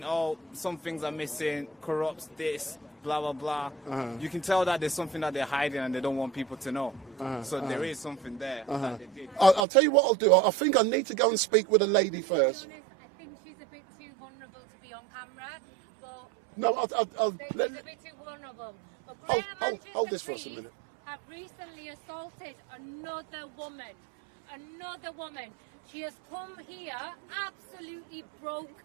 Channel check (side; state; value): left; drops out; at 9.7 s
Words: oh, some things are missing, corrupts this, blah, blah, blah, you can tell that there's something that they're hiding and they don't want people to know. So there is something there that they did. I'll tell you what I'll do. I think I need to go and speak with a lady first. I think she's a bit too vulnerable to be on camera. But No, she's a bit too vulnerable. But hold this for us a minute. Have recently assaulted another woman. She has come here absolutely